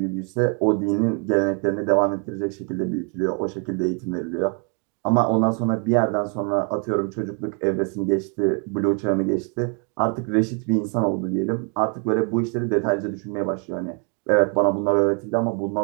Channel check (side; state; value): left; quieter; 38.6 dB